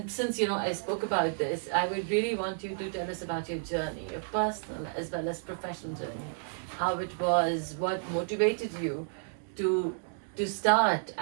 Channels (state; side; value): silent; left; digital silence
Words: since I spoke about this, I would really want you to tell us about your journey, your personal as well as professional journey, how it was, what motivated you to start